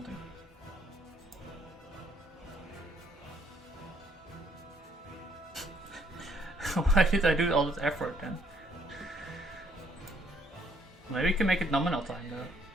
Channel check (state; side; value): normal; both; correlation 0.66